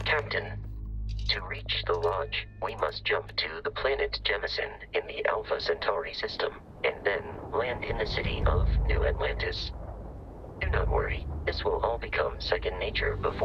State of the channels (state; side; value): identical; both; correlation 1.00